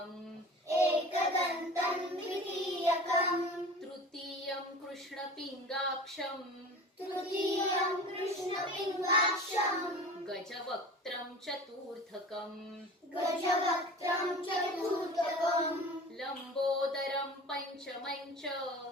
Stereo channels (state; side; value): normal; both; correlation 0.38